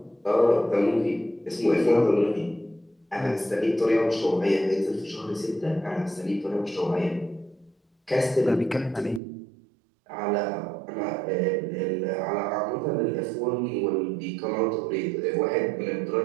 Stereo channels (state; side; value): drops out; left; at 9.2 s